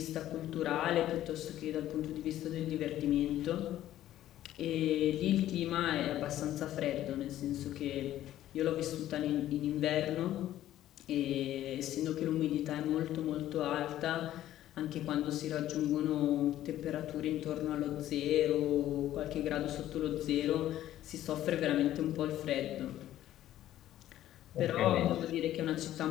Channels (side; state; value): right; quieter; 13.1 dB